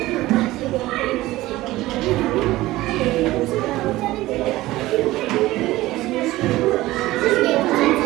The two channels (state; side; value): quieter; left; 17.5 dB